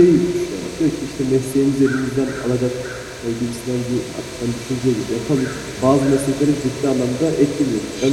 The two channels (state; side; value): identical; both; correlation 1.00